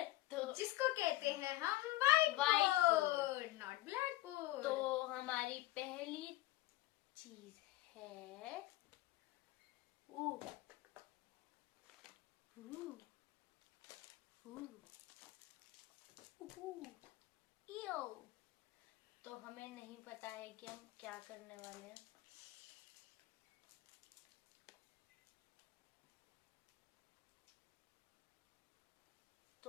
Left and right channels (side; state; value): right; quieter; 17.2 dB